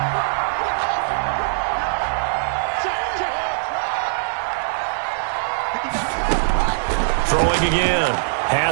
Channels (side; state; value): left; silent; digital silence